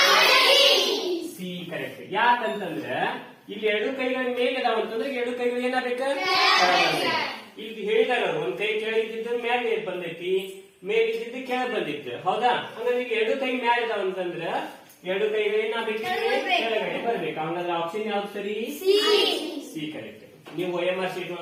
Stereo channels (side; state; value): both; identical; correlation 1.00